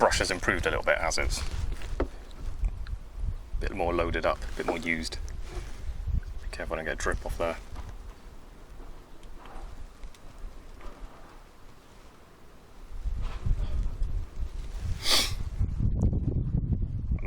has improved a little bit as it's a bit more loaded up, a bit more used. Be careful I don't get a drip off there.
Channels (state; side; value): identical; both; correlation 1.00